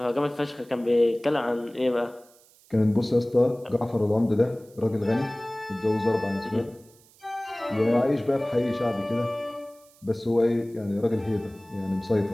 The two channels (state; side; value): noise; right; hiss, 28 dB below the sound